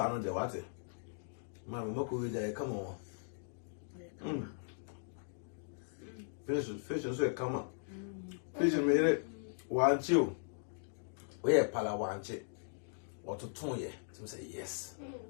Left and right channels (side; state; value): right; silent; digital silence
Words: of the water. Mamma, Moko, come on. Fish and say, come on. Fish and made it. Want you? We are Pala want it. Or to tone ye to say yes.